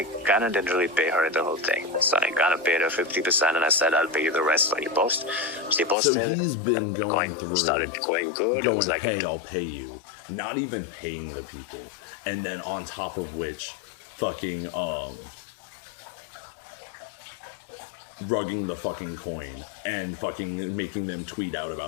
kind of didn't really pay her the whole thing. So I kind of paid her 50%, and I said I'll pay you the rest when you post. She posted. So he's been going through, started going good. going, was like, hey, I'll pay you. Not even paying the people, and then on top of which, fucking rugging the fucking coin and fucking making them tweet out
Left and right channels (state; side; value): drops out; right; at 6.0 s